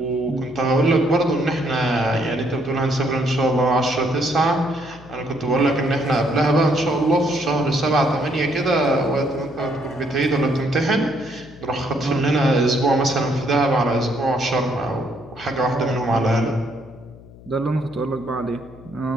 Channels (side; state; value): left; noise; hum, 20 dB below the sound